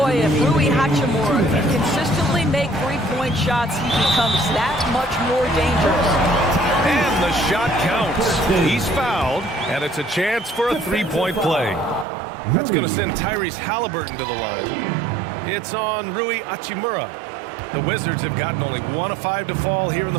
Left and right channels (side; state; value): left; drops out; at 12.1 s